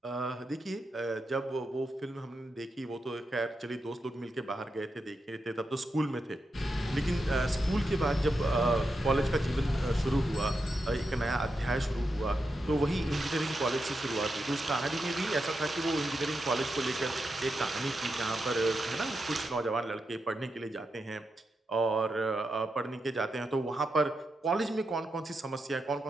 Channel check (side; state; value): both; normal; correlation 0.86